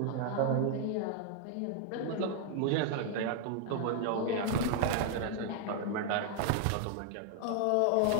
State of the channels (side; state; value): both; different; correlation 0.00